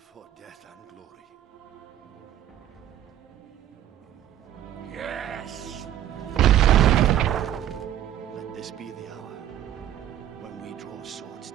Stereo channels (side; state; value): left; quieter; 11.7 dB